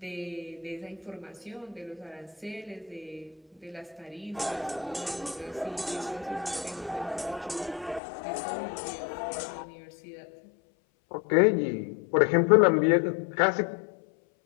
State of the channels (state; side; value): drops out; right; at 8.0 s